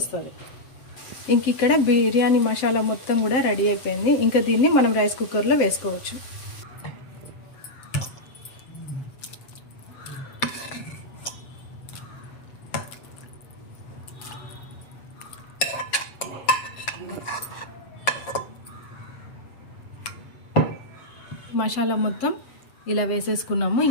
ఇంక ఇక్కడ బిర్యానీ మసాలా మొత్తం కూడా రెడీ అయిపోయింది. ఇంకా దీన్ని మనం రైస్ కుక్కర్లో వేసుకోవచ్చు. మసాలా మొత్తం ఇలా వేసేసుకున్నాము.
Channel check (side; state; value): right; late; 7.7 ms